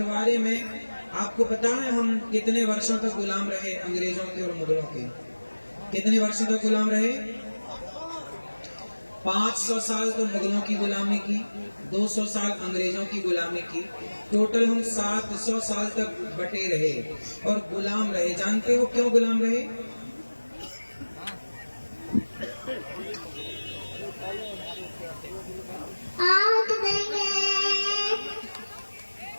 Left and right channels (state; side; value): inverted; both; correlation -1.00